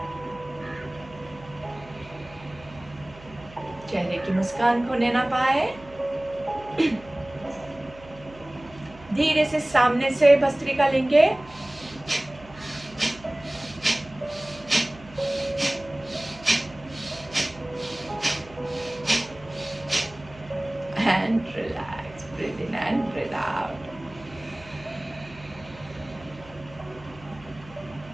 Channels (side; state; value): right; noise; hum, 20 dB below the sound